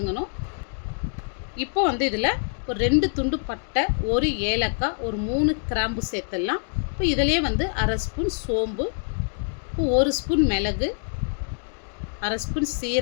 இப்போ வந்து இதில் ஒரு 2 துண்டு பட்டை, 1 ஏலக்காய், ஒரு 3 கிராம்பு சேர்த்துடலாம். இப்போ இதிலே வந்து அரை ஸ்பூன் சோம்பு, இப்போ 1 ஸ்பூன் மிளகு, அரை ஸ்பூன்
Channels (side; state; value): right; silent; digital silence